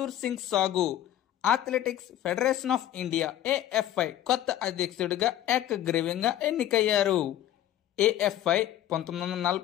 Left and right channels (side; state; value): right; quieter; 12.3 dB